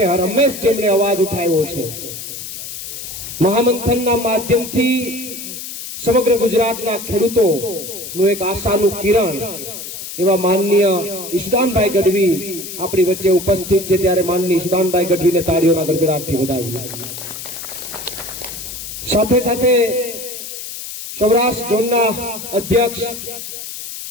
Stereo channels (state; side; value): noise; left; hiss, 9 dB below the sound